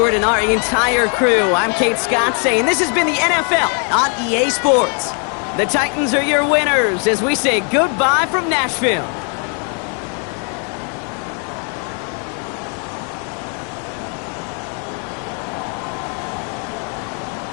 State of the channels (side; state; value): right; quieter; 39.7 dB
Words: and our entire crew, I'm Kate Scott saying this has been the NFL on EA Sports. The Titans are your winners as we say goodbye from Nashville.